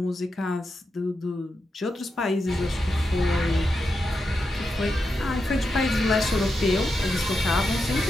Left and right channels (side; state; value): both; normal; correlation 0.87